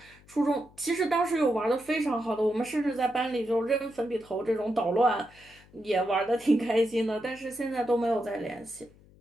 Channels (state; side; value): noise; left; hum, 26 dB below the sound